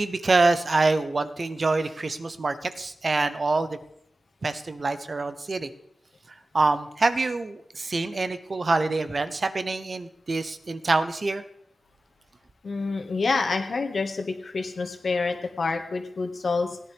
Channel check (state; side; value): normal; both; correlation 0.94